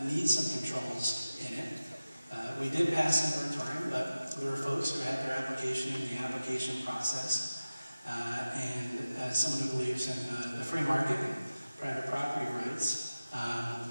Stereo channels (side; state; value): both; inverted; correlation -0.95